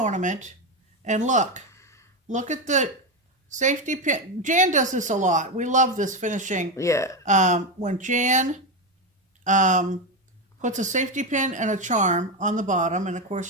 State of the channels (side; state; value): both; normal; correlation 0.12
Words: And look at the safety pin. Jan does this a lot. We love this finishing. Yeah. When Jan puts a safety pin and a charm on the bottom, and of